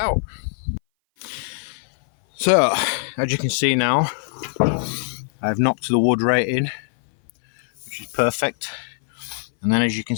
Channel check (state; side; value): silent; right; 59 dB below the other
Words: So as you can see now, I've knocked the wood right in, which is perfect. And then as you can